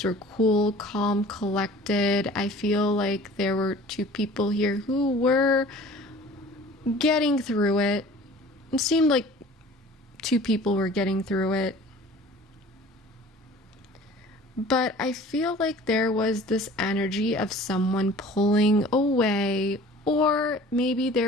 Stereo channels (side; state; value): both; normal; correlation 0.46